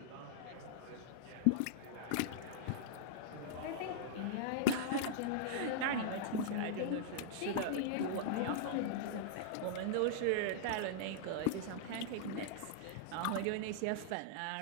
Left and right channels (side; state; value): both; different; correlation -0.01